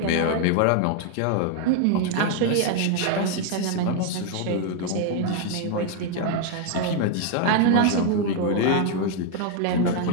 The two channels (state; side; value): different; both; correlation 0.00